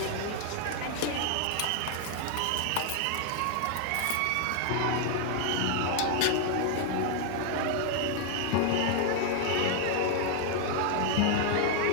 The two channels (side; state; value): both; different; correlation 0.00